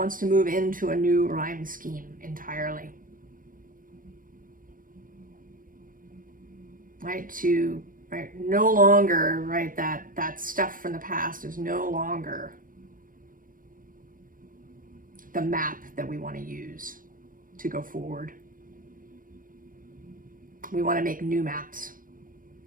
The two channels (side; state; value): left; late; 0.40 ms